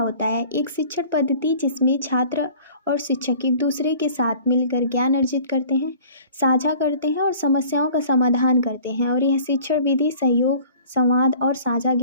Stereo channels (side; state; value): both; inverted; correlation -0.48